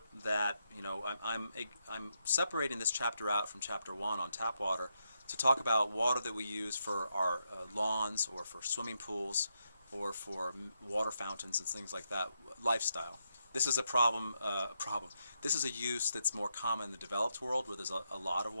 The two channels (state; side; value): inverted; both; correlation -0.82